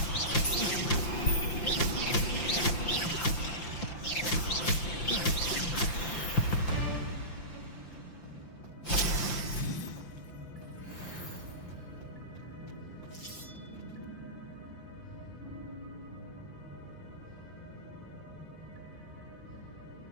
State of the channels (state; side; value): late; right; 5.8 ms